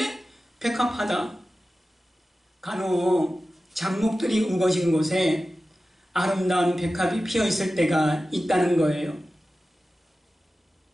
백합화다. 간혹 잡목들이 우거진 곳에 아름다운 백합이 피어있을 때가 있다는 거예요.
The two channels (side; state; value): both; normal; correlation 0.95